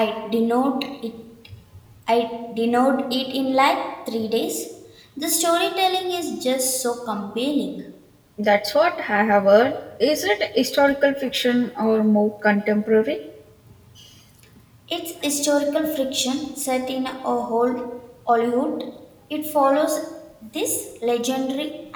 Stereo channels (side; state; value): both; identical; correlation 1.00